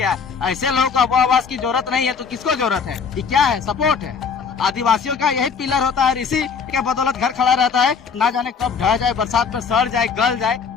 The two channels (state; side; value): quieter; right; 5.9 dB